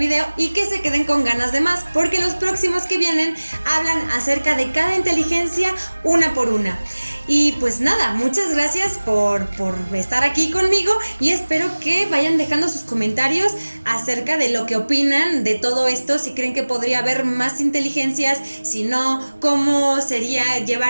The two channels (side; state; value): both; inverted; correlation -1.00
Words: y que se queden con ganas de más, porque los próximos que vienen hablan acerca de cada inteligencia una por una. Y pues nada, muchas gracias por estar aquí conmigo y espero que vayan dejando sus comentarios acerca de lo que opinan de todo esto, si creen que podría haber más inteligencias, si no, cómo sería